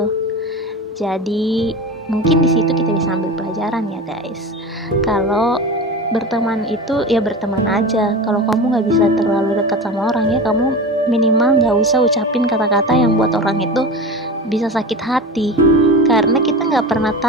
Jadi mungkin di situ kita bisa ambil pelajaran ya guys. Kalau berteman itu ya berteman aja. Kalau kamu nggak bisa terlalu dekat sama orang, ya kamu minimal nggak usah ucapin kata-kata yang buat orang itu bisa sakit hati. Karena kita nggak pernah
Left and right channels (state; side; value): normal; both; correlation 0.29